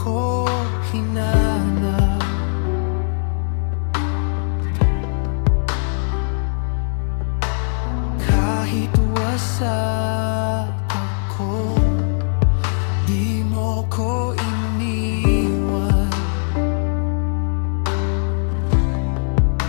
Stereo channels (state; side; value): silent; right; digital silence